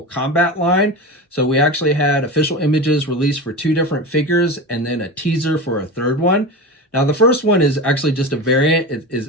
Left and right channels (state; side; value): normal; both; correlation 0.25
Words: Kombat line. So we actually had official images released for 2 different figures and then a teaser for a third one. Now the first one is actually just a variant. It